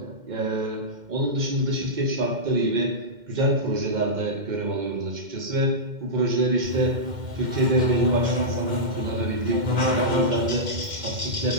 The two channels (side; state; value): left; late; 2.1 ms